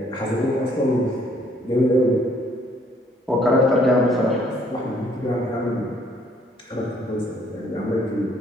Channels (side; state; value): both; normal; correlation 0.64